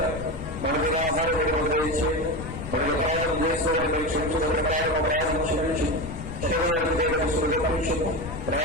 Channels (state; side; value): noise; left; rumble, 10 dB below the sound